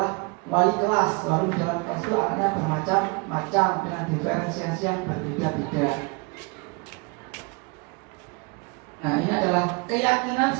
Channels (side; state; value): left; quieter; 29.8 dB